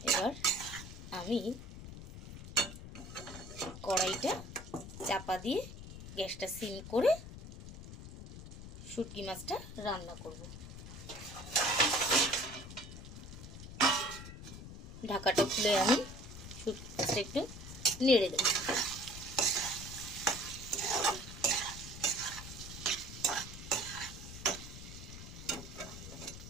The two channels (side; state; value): left; noise; rumble, 12 dB below the sound